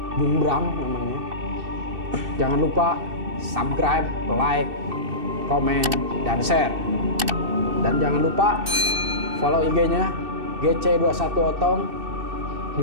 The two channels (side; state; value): left; late; 2.6 ms